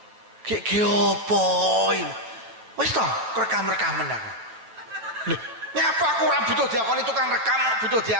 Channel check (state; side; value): late; left; 8.7 ms